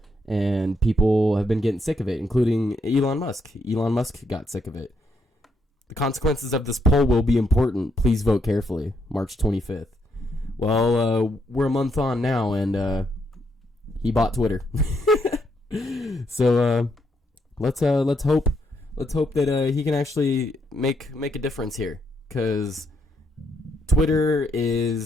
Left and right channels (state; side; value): normal; both; correlation 0.76